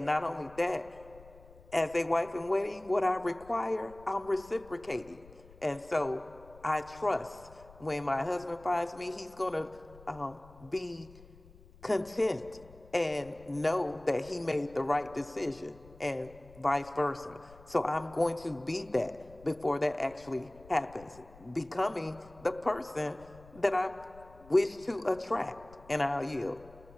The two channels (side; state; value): left; noise; rumble, 22 dB below the sound